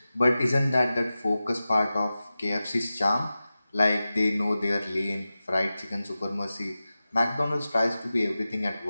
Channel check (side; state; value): both; inverted; correlation -0.95